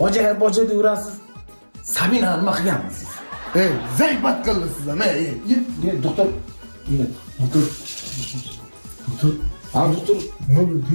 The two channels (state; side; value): inverted; both; correlation -1.00